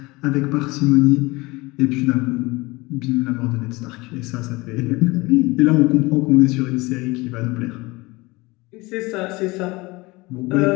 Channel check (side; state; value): right; quieter; 22.9 dB